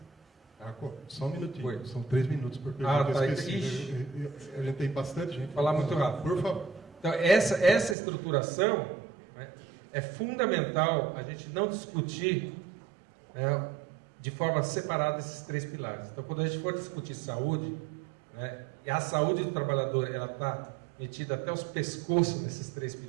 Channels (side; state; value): left; drops out; at 8.0 s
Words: Só um minutinho, Oi. são 3 minutos por pergunta. Tá. A gente tem bastante gente. Vou falar muito rápido. Por favor. Então, essa estruturação, né, é fundamental a gente não discutir, né, de forma separada esses 3 pilares. Então, quando a gente for discutir saúde, né, e a saúde do trabalhador ela está metida até os pescoços nesses 3